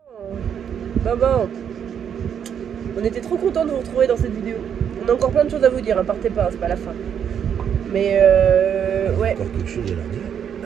Maman, on était trop contents de vous retrouver dans cette vidéo. On a encore plein de choses à vous dire, hein, partez pas, c'est pas la fin. Mais ouais. Encore quelque chose à leur dire.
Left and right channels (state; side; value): quieter; left; 8.3 dB